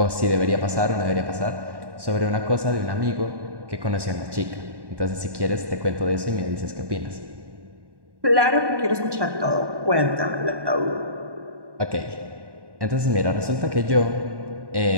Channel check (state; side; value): late; left; 1.1 ms